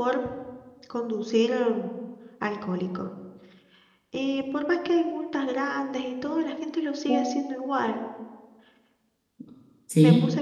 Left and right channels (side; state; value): both; identical; correlation 1.00